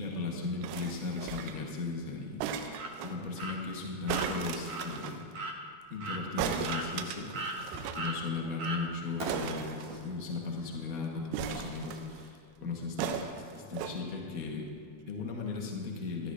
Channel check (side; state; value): left; late; 12 ms